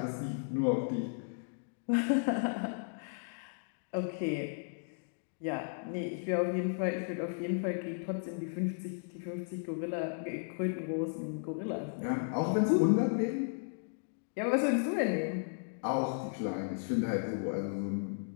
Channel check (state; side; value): silent; right; digital silence